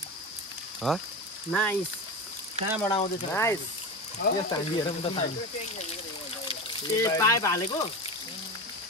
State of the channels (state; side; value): normal; both; correlation 0.25